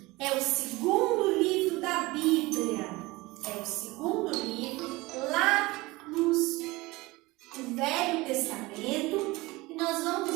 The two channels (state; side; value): quieter; left; 21.4 dB